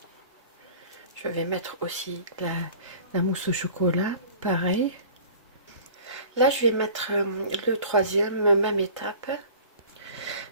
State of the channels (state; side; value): inverted; both; correlation -0.44